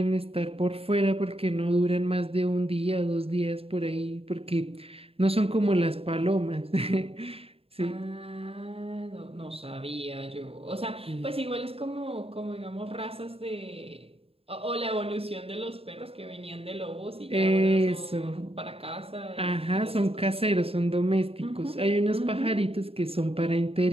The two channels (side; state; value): left; late; 0.28 ms